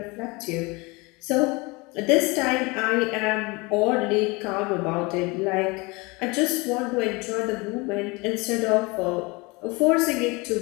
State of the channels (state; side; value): quieter; right; 26.0 dB